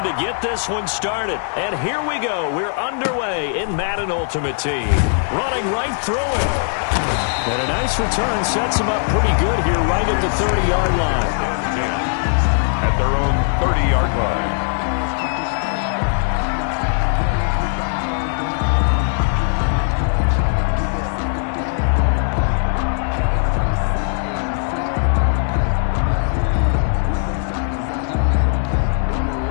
to get this one started. And here we go. We're underway in Madden Ultimate Team. Running right through it. And a nice return sets them up pretty good here right at the 30-yard line. 10 at their own 30-yard line.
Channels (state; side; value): silent; right; digital silence